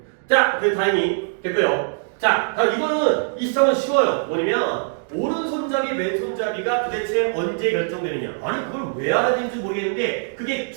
자, 그래 다행히 됐고요. 자, 이거는 이 시험은 쉬워요. 뭐냐면 오른손잡이, 왼손잡이가 도대체 언제 결정되느냐. 아니 그걸 왜 알아야 되는지 모르겠는데 그게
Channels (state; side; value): silent; left; digital silence